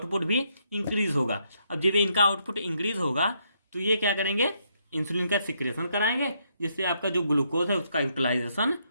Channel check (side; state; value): both; inverted; correlation -0.75